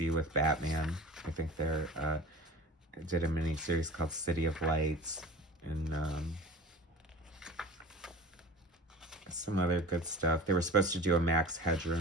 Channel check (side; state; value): both; normal; correlation 0.38